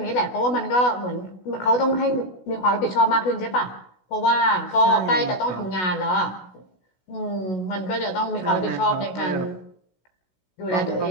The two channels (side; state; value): right; late; 16 ms